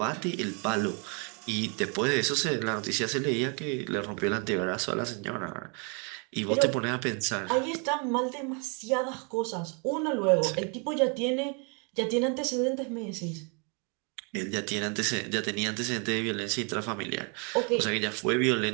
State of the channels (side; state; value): left; quieter; 35.7 dB